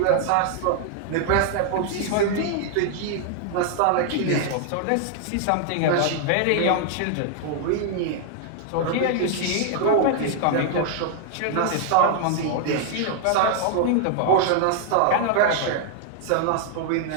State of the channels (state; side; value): different; both; correlation 0.00